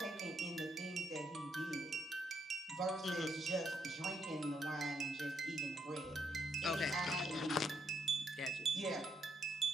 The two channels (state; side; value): normal; both; correlation 0.76